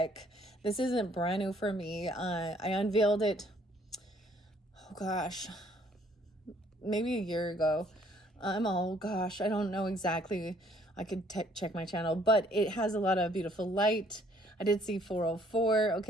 This isn't brand new for me. I unveiled it, oh gosh, maybe a year ago. Oh gosh, I don't know exactly. I could check my channel, but it has a lot of beautiful light. I did see 404,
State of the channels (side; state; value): both; normal; correlation 0.62